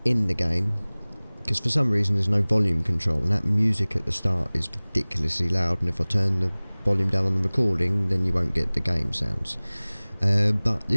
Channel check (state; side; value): inverted; both; correlation -1.00